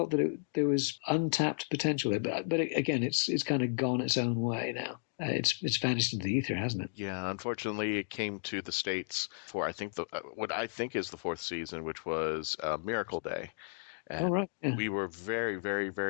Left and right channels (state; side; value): silent; right; digital silence